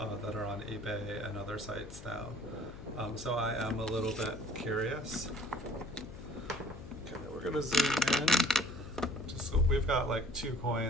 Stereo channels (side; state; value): left; noise; hum, 14 dB below the sound